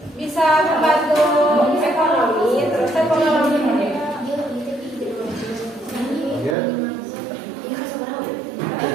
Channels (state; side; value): drops out; left; at 6.6 s